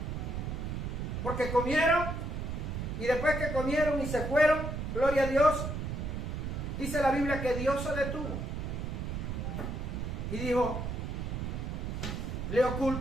Porque comieron, y después que comieron y se fueron, gloria a Dios, dice la Biblia que Dios se detuvo. Y dijo, ¿le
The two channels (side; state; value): right; noise; rumble, 3 dB below the sound